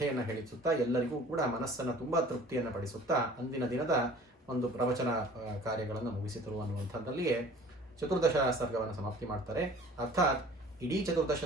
ಹೇಳಿಸುತ್ತಾ ಎಲ್ಲರಿಗೂ ಕೂಡ ಮನಸ್ಸನ್ನು ತುಂಬ ತೃಪ್ತಿಯನ್ನು ಪಡಿಸುತ್ತಾ ಅಂದಿನ ದಿನದ ಒಂದು ಪ್ರವಚನ ಕಾರ್ಯಗಳನ್ನು ಮುಗಿಸಿದರು ಅನ್ನುವಂಥದ್ದಲ್ಲಿಯೇ ಚತುರ್ದಶ ಸರ್ಗವನ್ನು ಸಮಾಪ್ತಿ ಮಾಡ್ತಾರೆ. ಅರ್ಥಾತ್ ಇಡೀ ಚತುರ್ದಶ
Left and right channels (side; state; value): both; normal; correlation 0.48